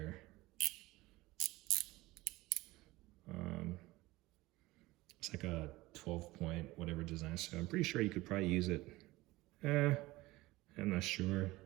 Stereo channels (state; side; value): quieter; left; 19.6 dB